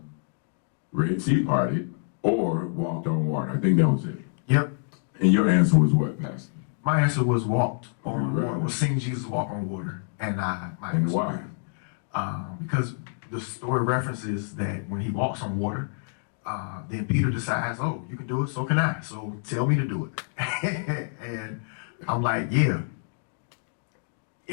Red Sea parted or walked on water? I think that was it. Yep. And your answer was what, Pastor? My answer was walked on Right. water. Was seeing Jesus walk on water, and my And answer why? because the story references that when he walks on water, then Peter decides, oh, you can do it, so can I. So tell me to do it. And I'm like, yeah.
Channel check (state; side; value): silent; right; digital silence